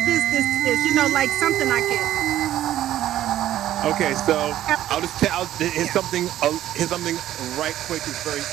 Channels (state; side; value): quieter; left; 12.9 dB